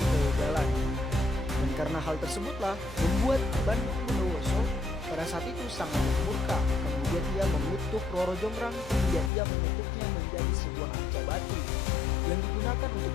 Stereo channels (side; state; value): right; drops out; at 9.3 s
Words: kegagalan. Dan karena hal tersebutlah membuat Bandung Bondowoso pada saat itu sangat murka. Kemudian ia mengutuk Roro Jonggrang hingga ia membentuknya menjadi sebuah arca batu yang digunakan untuk